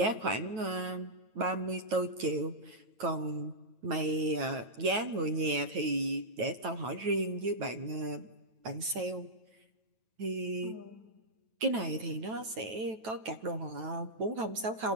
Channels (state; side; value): late; left; 9.2 ms